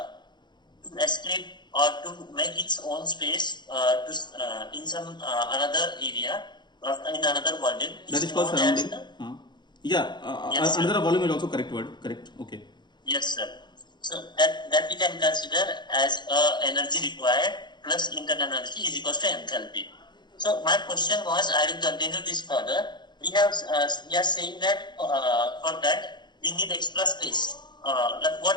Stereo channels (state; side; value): late; right; 0.21 ms